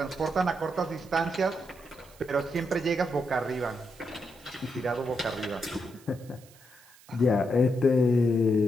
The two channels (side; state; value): right; noise; hiss, 25 dB below the sound